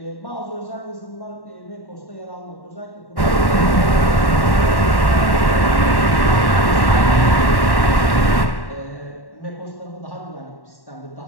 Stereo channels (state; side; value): late; right; 1.1 ms